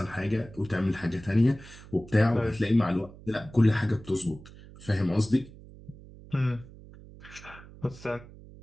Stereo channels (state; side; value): noise; right; hum, 19 dB below the sound